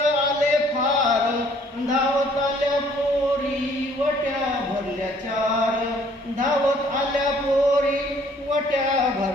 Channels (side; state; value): both; normal; correlation 0.60